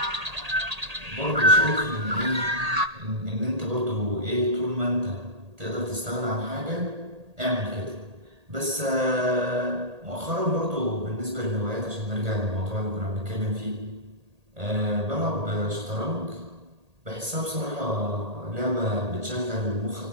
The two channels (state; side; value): late; left; 1.8 ms